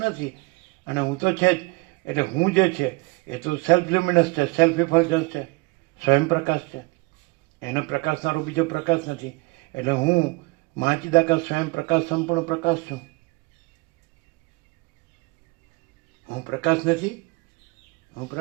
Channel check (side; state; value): left; quieter; 24.8 dB